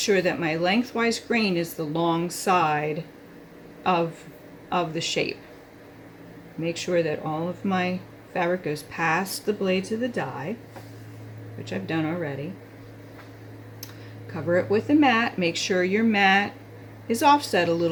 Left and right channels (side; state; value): both; identical; correlation 1.00